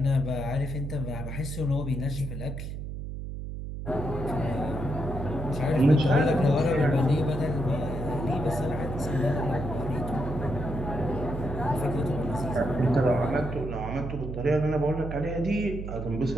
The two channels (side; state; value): right; noise; hum, 7 dB below the sound